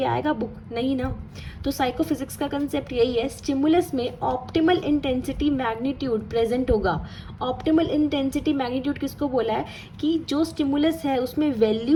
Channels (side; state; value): both; identical; correlation 1.00